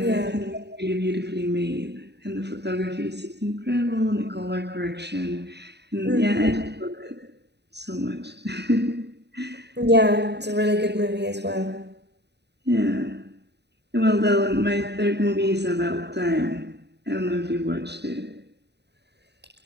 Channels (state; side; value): late; left; 0.49 ms